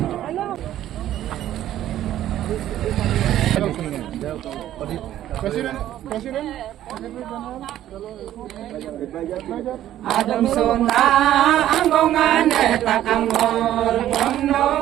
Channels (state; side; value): quieter; left; 12.5 dB